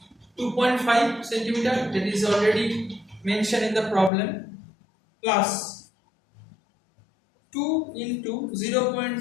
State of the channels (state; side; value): drops out; right; at 4.1 s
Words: 2.5 centimeter, that is already mentioned in the problem, plus 2 into